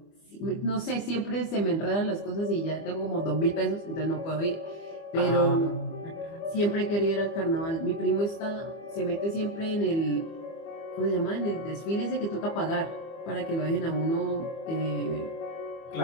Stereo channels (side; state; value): right; late; 25 ms